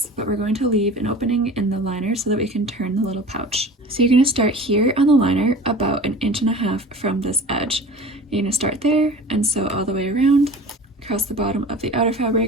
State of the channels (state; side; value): normal; both; correlation 0.39